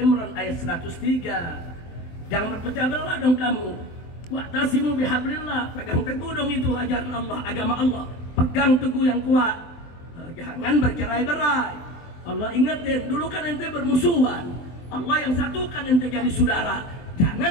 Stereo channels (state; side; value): late; right; 23 ms